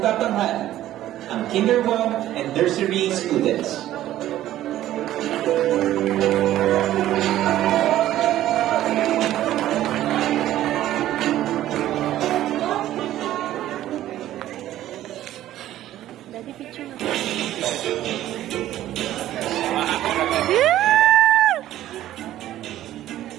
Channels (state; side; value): quieter; left; 13.4 dB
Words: ang Kinder 1 and Nursery students. Daddy, picture mo.